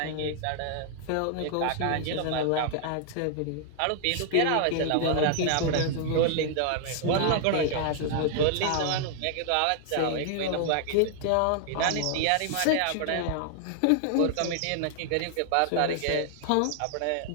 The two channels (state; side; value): different; both; correlation 0.00